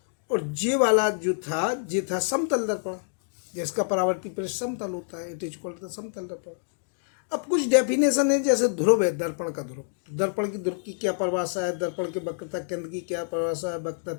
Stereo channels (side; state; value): right; silent; digital silence